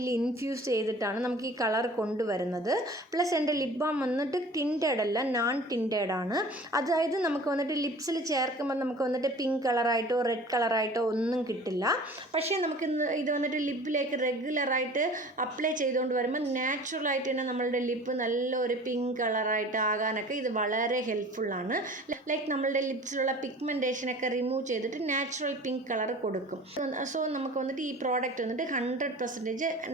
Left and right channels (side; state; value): both; normal; correlation 0.44